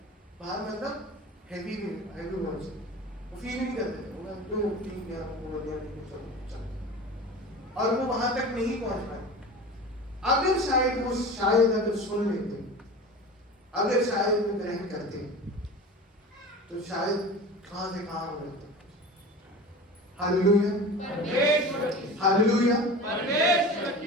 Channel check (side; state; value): both; normal; correlation 0.34